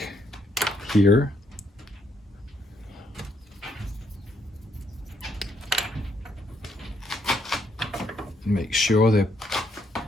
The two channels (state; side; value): normal; both; correlation 0.74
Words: here. Make sure they're